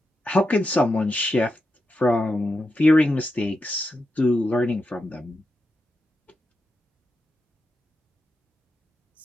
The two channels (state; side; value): normal; both; correlation 0.87